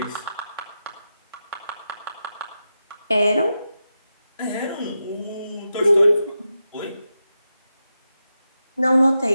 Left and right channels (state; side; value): inverted; both; correlation -0.89